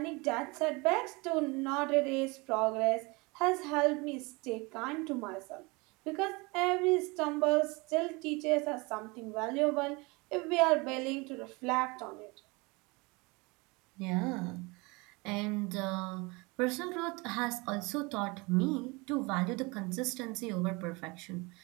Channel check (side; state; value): left; quieter; 26.4 dB